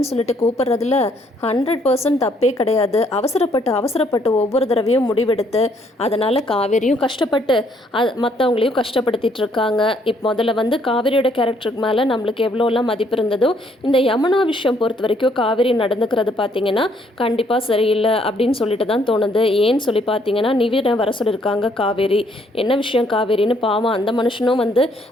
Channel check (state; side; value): normal; both; correlation 0.67